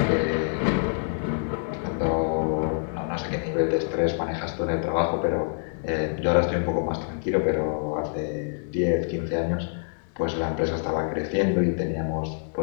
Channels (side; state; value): right; silent; digital silence